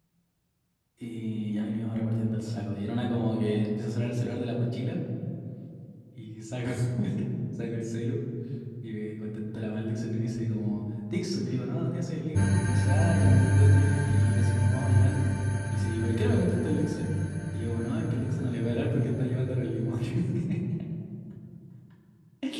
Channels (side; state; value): both; identical; correlation 1.00